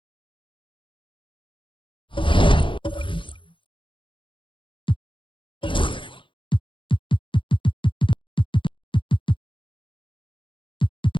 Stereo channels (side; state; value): right; late; 0.24 ms